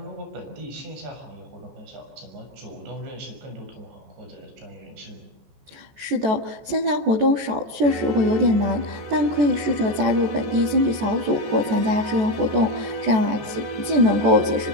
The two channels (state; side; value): late; left; 14 ms